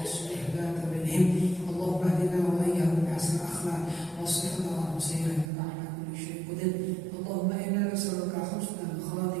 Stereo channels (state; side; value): drops out; left; at 5.5 s